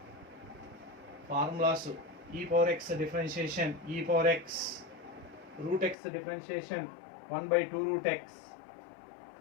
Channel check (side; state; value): right; drops out; at 6.0 s